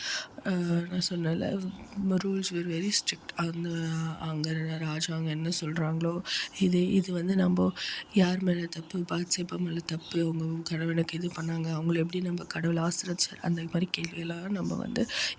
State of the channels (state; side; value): identical; both; correlation 1.00